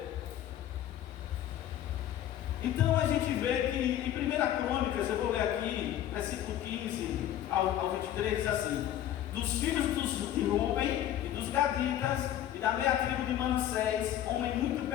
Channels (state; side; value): quieter; right; 11.8 dB